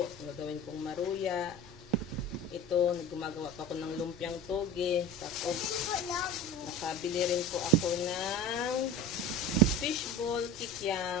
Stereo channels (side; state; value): both; normal; correlation 0.33